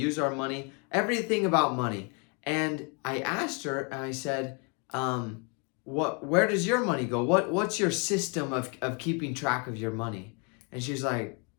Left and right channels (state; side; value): quieter; right; 35.3 dB